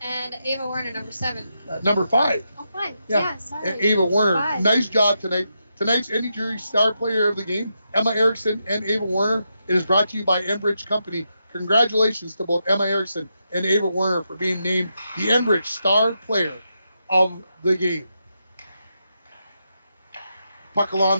Ava Werner, number 7. Number 5. Oh, 5. Yeah. Yeah, sorry. And Ava Werner. 5. Nice job tonight. Tonight's Energy Star Player of the game, Emma Erickson and Ava Werner. It is brought to you by Enbridge Company. Congratulations to both Emma Erickson and Ava Werner for being named the Enbridge Star Player of the game. Puck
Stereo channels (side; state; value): both; inverted; correlation -0.85